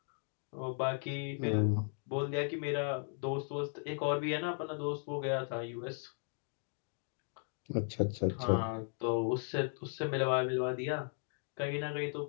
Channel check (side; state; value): right; silent; 53 dB below the other